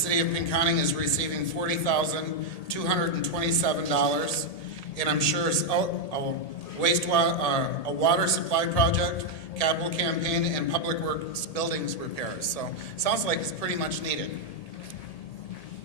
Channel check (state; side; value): late; right; 1.8 ms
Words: of Pinconning is receiving $40,227, and I'm sure it's a water supply project, capital campaign, and public works buildings repairs. So sounds like it's pretty much needed.